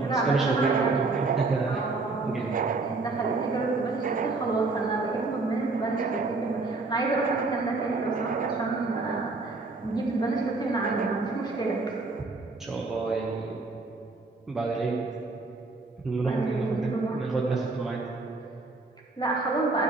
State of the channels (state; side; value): quieter; left; 3.6 dB